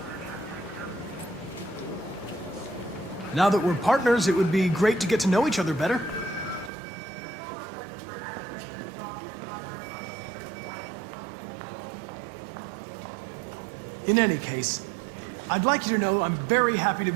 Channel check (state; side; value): drops out; left; at 6.7 s